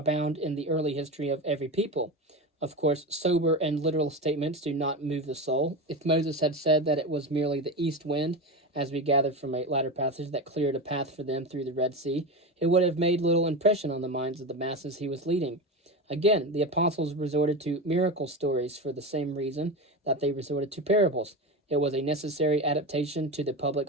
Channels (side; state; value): both; normal; correlation 0.22